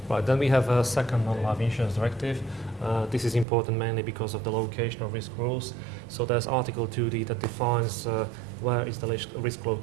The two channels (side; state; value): left; drops out; at 3.5 s